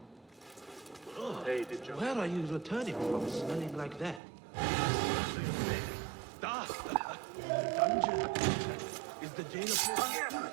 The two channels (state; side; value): drops out; left; at 4.2 s